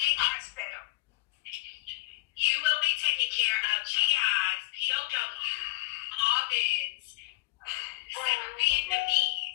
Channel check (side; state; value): right; quieter; 21.3 dB